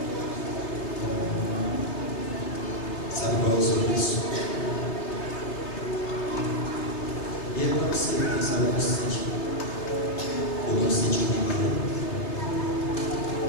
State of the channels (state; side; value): late; right; 3.3 ms